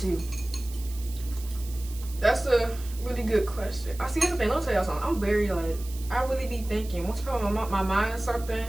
That's a really good question. I see everything. Let me tell y'all something. I'm very I really be thinking. Once I put my mind on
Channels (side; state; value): right; noise; hiss, 17 dB below the sound